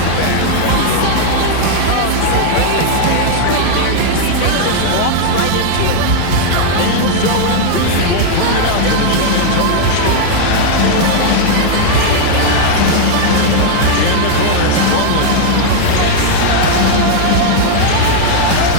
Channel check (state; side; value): different; both; correlation 0.00